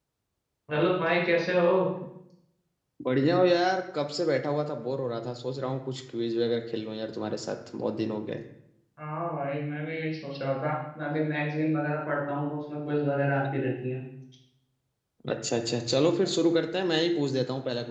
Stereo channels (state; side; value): identical; both; correlation 1.00